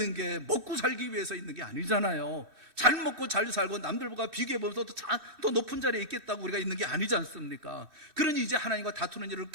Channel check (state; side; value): late; left; 3.1 ms